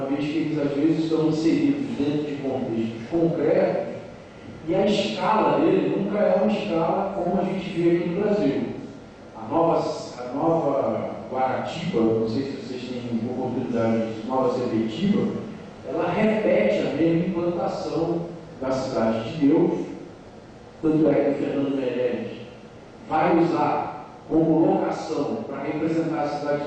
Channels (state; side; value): identical; both; correlation 1.00